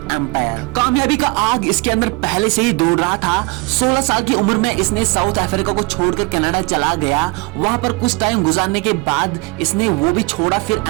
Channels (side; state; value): left; quieter; 24.3 dB